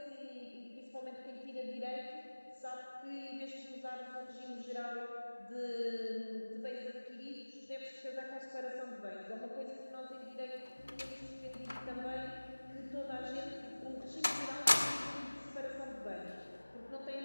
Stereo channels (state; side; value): inverted; both; correlation -1.00